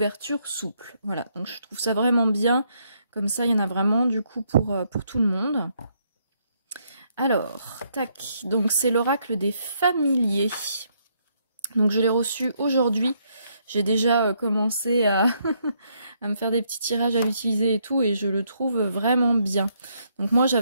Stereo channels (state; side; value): inverted; both; correlation -0.73